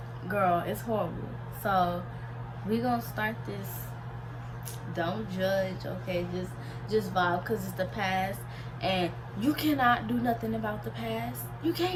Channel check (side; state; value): both; identical; correlation 1.00